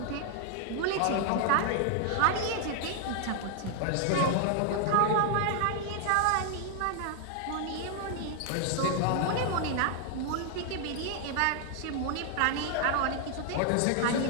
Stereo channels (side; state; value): both; different; correlation 0.00